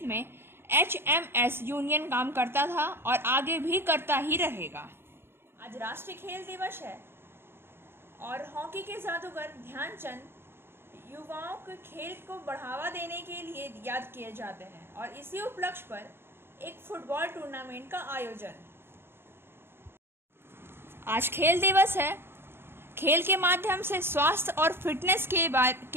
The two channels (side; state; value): left; late; 0.11 ms